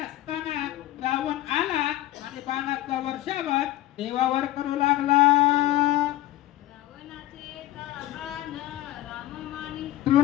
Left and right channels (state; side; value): quieter; right; 15.1 dB